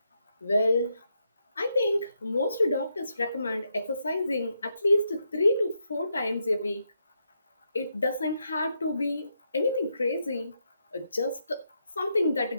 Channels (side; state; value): both; inverted; correlation -0.81